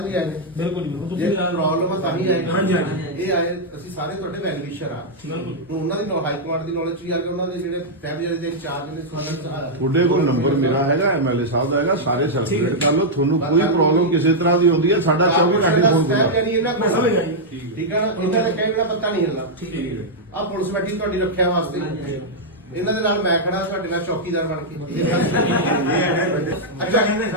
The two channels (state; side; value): normal; both; correlation -0.05